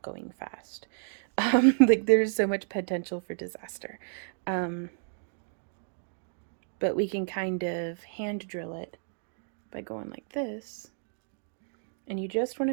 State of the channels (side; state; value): left; silent; digital silence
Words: going fast. Like there's so much potential for disaster. But we can kind of hand drill it by going like this. And you just want